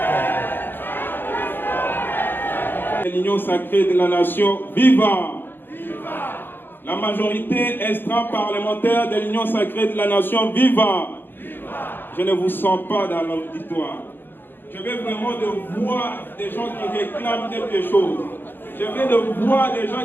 L'Union sacrée de la nation, viva! La majorité extra-parlementaire de l'Union sacrée de la nation, viva! Je ne vous sens pas dans l'auditoire. Je veux vraiment de voir des gens qui réclament quelque chose. Je veux de voir des gens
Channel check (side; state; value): right; late; 0.093 ms